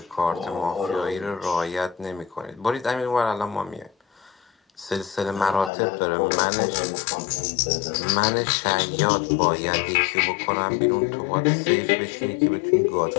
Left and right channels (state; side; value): drops out; right; at 5.7 s